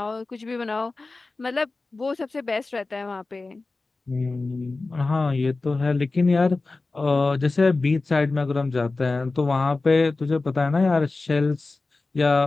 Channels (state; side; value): quieter; right; 3.5 dB